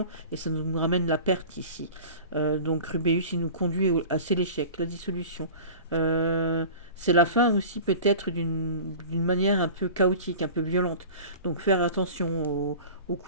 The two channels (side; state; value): both; inverted; correlation -0.38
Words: et ça nous ramène la perte ici. Donc Rubéus, il nous conduit c'est l'échec, la dissolution. C'est la fin aussi peut-être d'une manière un peu chaotique, un peu violente. Donc faire attention aux